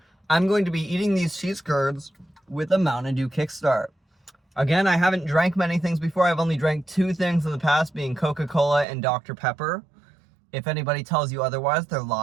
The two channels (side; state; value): left; drops out; at 8.8 s